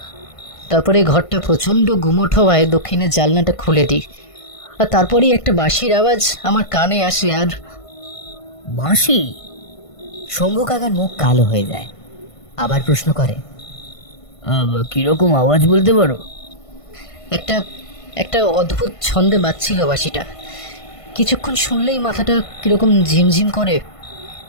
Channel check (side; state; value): right; late; 1.5 ms